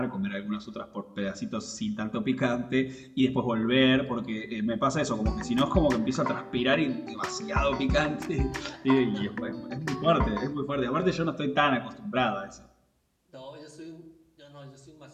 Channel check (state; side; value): identical; both; correlation 1.00